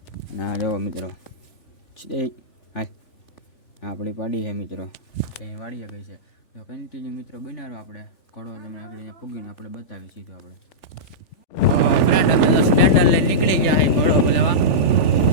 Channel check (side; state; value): right; late; 3.4 ms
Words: ના જો મિત્રો હાય આપણી પાડી છે મિત્રો, ત્યાં વાડીએ ગઈ છે। તો કન્ટિન્યુ મિત્રો બનાવો આપણે ઘોડો તમે આગળ અહીંયા પૂગીને આપણે બતાવી સીધું આપણે ફ્રેન્ડ અમે તો સ્પ્લેન્ડર લઈને નીકળી ગયા છે ઘોડો બોલાવા।